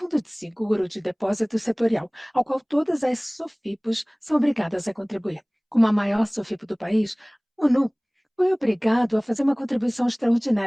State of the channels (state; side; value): identical; both; correlation 1.00